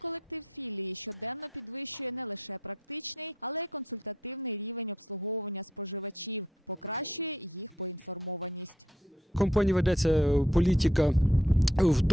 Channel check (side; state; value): both; normal; correlation 0.71